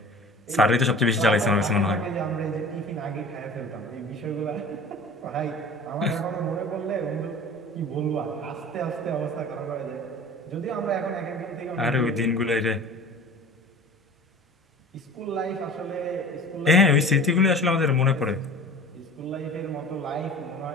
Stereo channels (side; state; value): both; normal; correlation 0.40